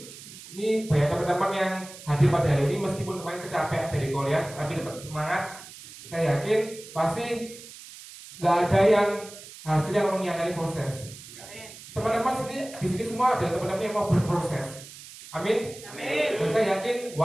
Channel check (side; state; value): right; noise; hiss, 16 dB below the sound